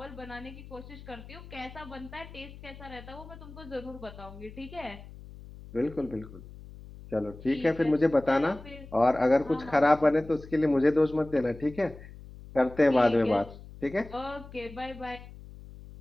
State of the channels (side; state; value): left; noise; hum, 16 dB below the sound